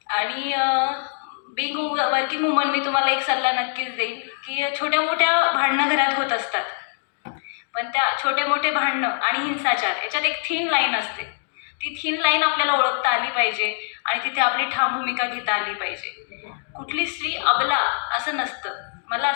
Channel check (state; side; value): silent; right; digital silence